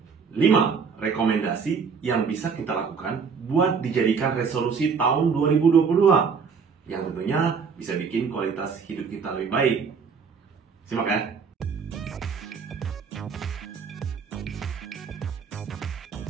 5 rekomendasi yang bisa kita lakukan buat dijadikan resolusi tahun 2022 yang tentunya bisa bikin kualitas hidup kita lebih baik. Simak ya.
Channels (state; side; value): quieter; left; 5.8 dB